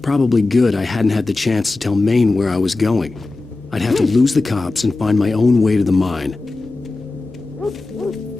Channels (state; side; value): quieter; right; 3.3 dB